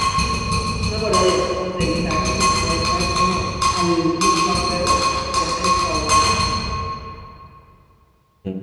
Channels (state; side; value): identical; both; correlation 1.00